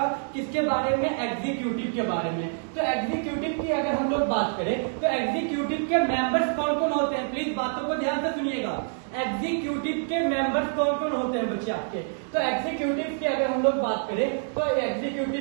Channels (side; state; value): left; silent; digital silence